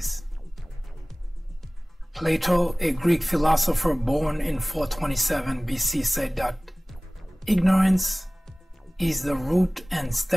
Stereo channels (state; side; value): normal; both; correlation 0.98